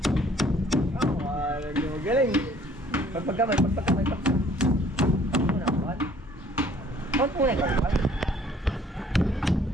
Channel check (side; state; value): both; normal; correlation 0.57